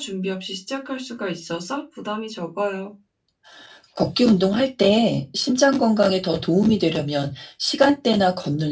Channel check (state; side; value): identical; both; correlation 1.00